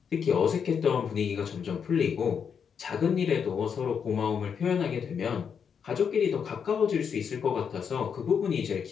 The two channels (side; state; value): right; quieter; 7.0 dB